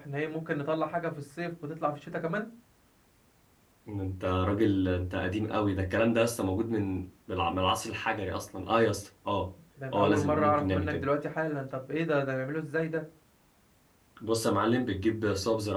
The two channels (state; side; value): identical; both; correlation 1.00